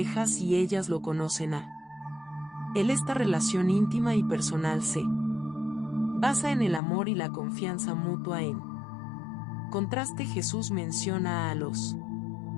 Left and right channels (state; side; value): drops out; right; at 6.8 s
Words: y ellas lo conocen a él. Esta relación íntima y personal se basa en el amor y la confianza mutua. En contraste, Jesús menciona a los